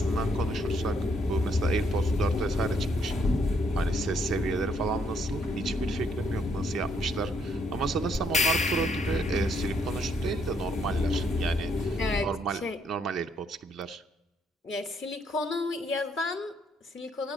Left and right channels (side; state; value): both; normal; correlation 0.71